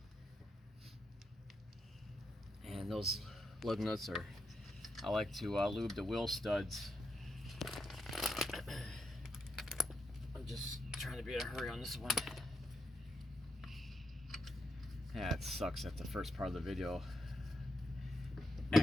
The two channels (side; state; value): both; normal; correlation 0.83